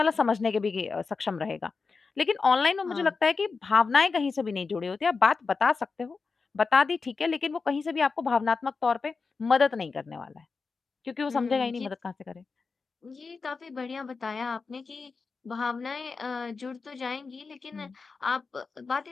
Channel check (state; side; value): quieter; right; 4.6 dB